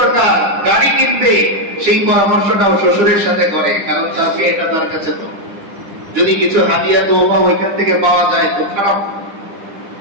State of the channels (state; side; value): late; left; 10 ms